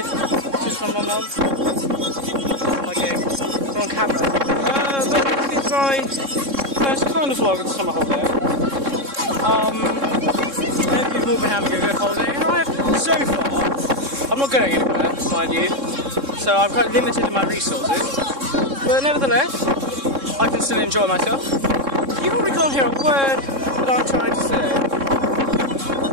just my mum. Okay, it's on camera. This is my first kind of vlog of the summer holiday. I hope you've all been having a good holiday, and I have so far. I'm not going anywhere, mind you, so I'm quite limited in my resources, but nevertheless, I can still enjoy myself. You probably can't hear a word that I'm trying to say,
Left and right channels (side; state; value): left; late; 3.6 ms